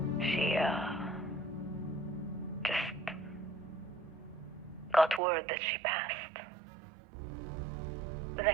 She, just got word that she passed. The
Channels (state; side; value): drops out; left; at 5.2 s